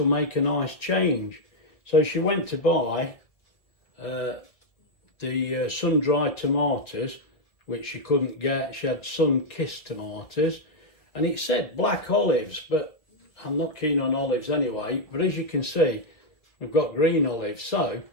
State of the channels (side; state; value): right; late; 1.8 ms